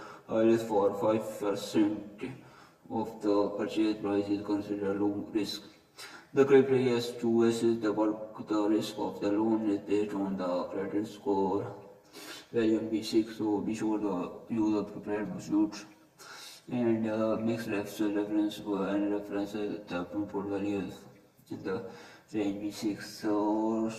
risk for 5% of the purchase price is considered low risk. The criteria is to assess the risk of the loan is based on the credit score value in B6. So be sure to use the prepared pursuits and mix reference and references the input values in the range B6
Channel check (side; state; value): both; identical; correlation 1.00